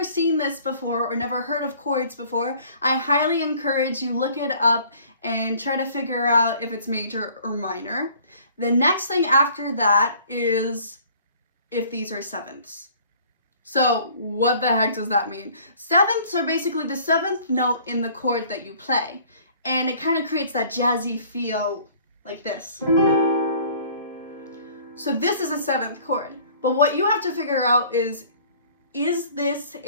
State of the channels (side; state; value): both; inverted; correlation -0.53